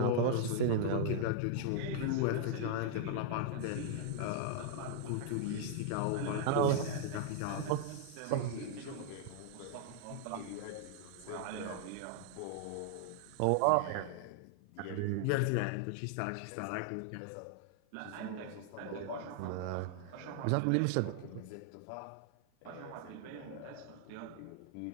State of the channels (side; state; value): both; different; correlation 0.00